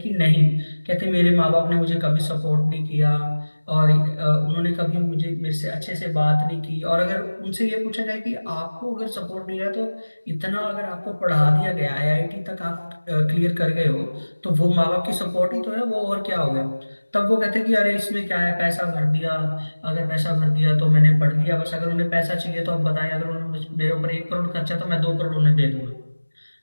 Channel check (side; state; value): both; inverted; correlation -1.00